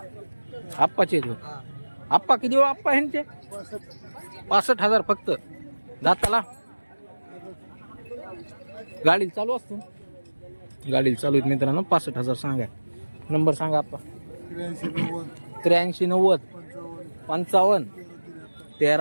आप्पाचे आहेत. आप्पा किती हो आप्पा ह्यांचे? 65,000 फक्त दाताला. गाडी चालू असते. गाडी चालू आहेत मित्रांनो. 65,000 सांगा. नंबर सांगा आप्पा. 83 90 55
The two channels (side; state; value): both; inverted; correlation -1.00